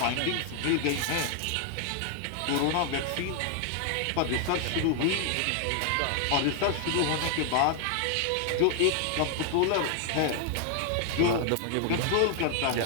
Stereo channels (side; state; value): both; different; correlation 0.00